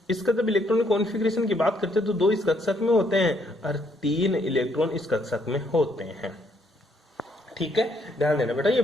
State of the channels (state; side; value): normal; both; correlation 0.71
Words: इसका जब इलेक्ट्रॉनिक कॉन्फ़िगरेशन की बात करते हैं तो 2 इस कक्षक में होते हैं और 3 इलेक्ट्रॉन इस कक्षक में होते हैं। ठीक है, ध्यान देना बेटा, ये